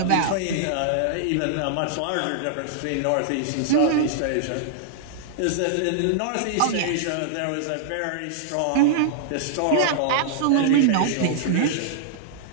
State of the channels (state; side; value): different; both; correlation -0.01